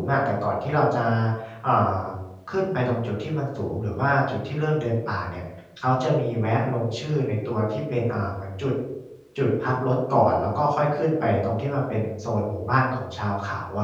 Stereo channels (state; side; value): identical; both; correlation 1.00